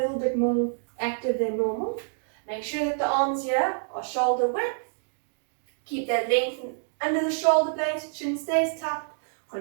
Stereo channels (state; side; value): silent; left; digital silence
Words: bit more active than normal. Make sure that the arms here are shoulder width. Keep that length under the shoulder blades, chin stays tucked.